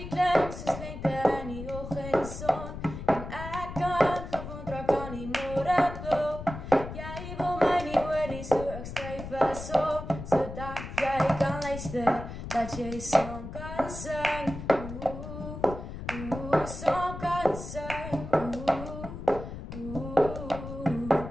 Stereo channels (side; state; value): left; noise; rumble, 9 dB below the sound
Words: klinkt zo slinter in die ochtendzon. En ik kan gewoon trek aan die morgenklok. Jij wil mij niet horen, so ik schrijf een song. Zodat jij kan luisteren, dat jij song kan zingen. Song kan zingen.